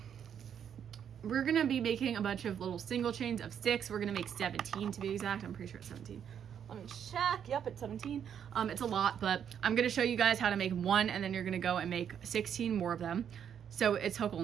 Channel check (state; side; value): quieter; left; 8.5 dB